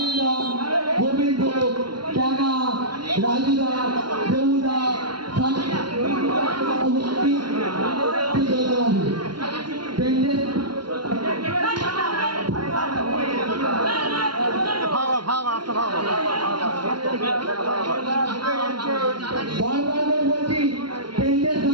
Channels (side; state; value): left; late; 0.72 ms